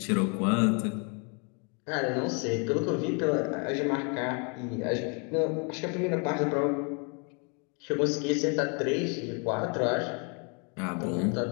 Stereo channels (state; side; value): quieter; right; 36.3 dB